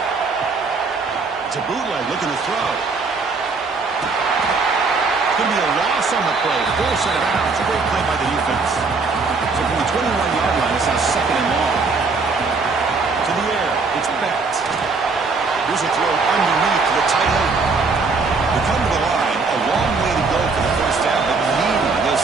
It's a bootleg looking to throw. Going to be a loss on the play. Force it out. It's a great play by the defense. So from the 21-yard line, it's now 2nd and long. To the air. It's Beck. Here's a throw underneath to the tight end. They come to the line. A long way to go for the first down, but needing this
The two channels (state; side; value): quieter; left; 4.3 dB